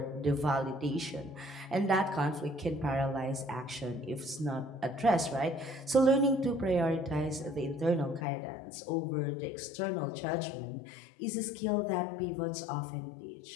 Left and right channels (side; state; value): right; drops out; at 8.2 s